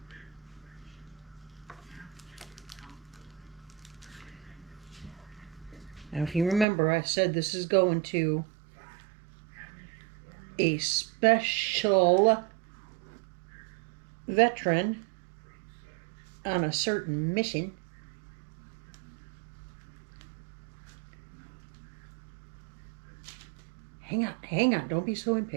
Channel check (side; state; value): left; drops out; at 6.7 s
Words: Now, if you remember, I said this is going to a special veteran on a certain mission. Hang on, don't be so